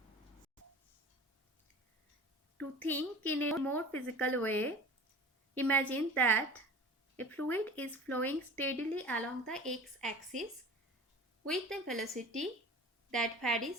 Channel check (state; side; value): normal; both; correlation 0.38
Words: To think in a more physical way, imagine that a fluid is flowing steadily along the x-axis with a velocity that